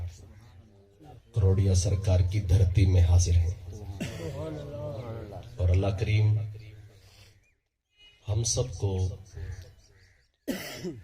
کروڑیا سرکار کی دھرتی میں حاضر ہیں اور اللہ کریم ہم سب کو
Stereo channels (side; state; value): both; identical; correlation 1.00